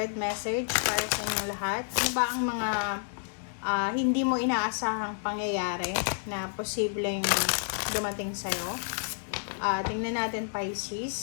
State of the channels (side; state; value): right; silent; digital silence